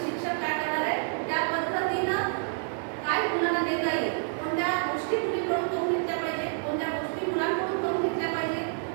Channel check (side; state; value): left; silent; 59 dB below the other